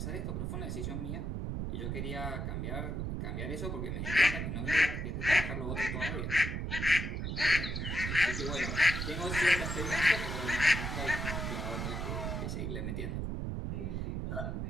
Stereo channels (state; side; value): noise; right; rumble, 2 dB below the sound